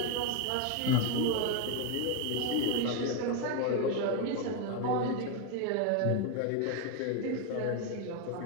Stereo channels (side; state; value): both; different; correlation 0.02